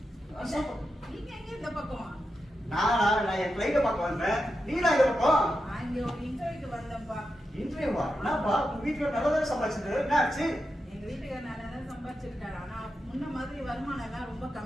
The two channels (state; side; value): normal; both; correlation 0.88